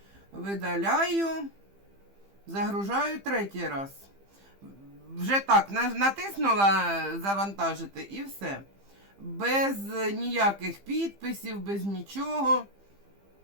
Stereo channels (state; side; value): late; left; 15 ms